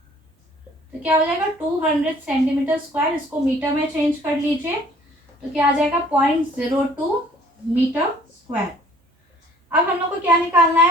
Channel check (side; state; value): both; normal; correlation 0.55